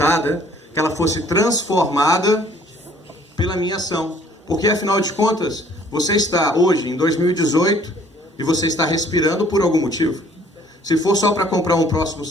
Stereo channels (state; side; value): normal; both; correlation 0.58